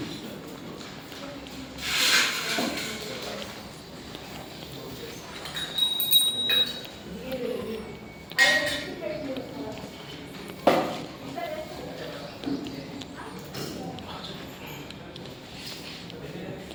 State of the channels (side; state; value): both; identical; correlation 1.00